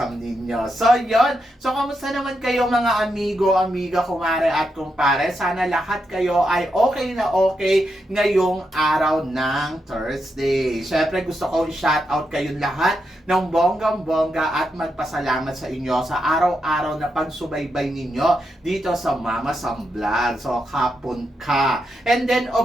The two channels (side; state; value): both; normal; correlation 0.84